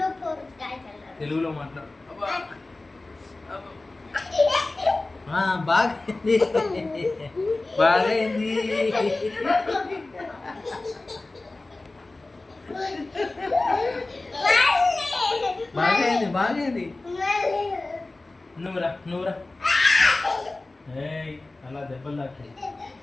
తెలుగులో మాట్లాడు బాగైంది బాగైంది బాగైంది బాగైంది నువ్వురా అలా దెబ్బలు తాకి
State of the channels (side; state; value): right; quieter; 3.1 dB